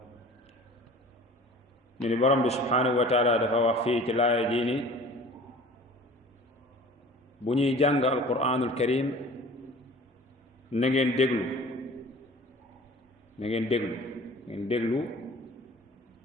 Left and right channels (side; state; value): both; normal; correlation 0.44